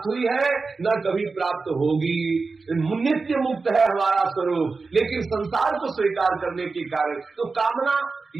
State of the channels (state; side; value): quieter; left; 4.2 dB